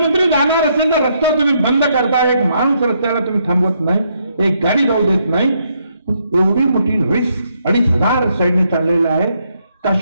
जाणार असेल तर रस्ता तुम्ही बंद करता, एक माणूस रस्त्याला तुम्ही थांबवत नाही, एक गाडी जाऊ देत नाही. एवढी मोठी रिस्क, 2,500 सैन्य चाललेलं आहे.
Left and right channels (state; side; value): inverted; both; correlation -0.75